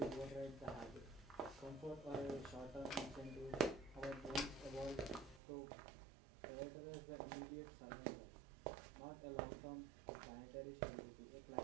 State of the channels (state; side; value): drops out; left; at 5.4 s